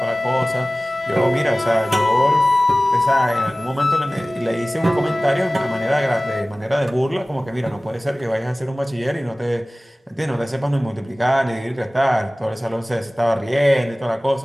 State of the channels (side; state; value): both; normal; correlation 0.97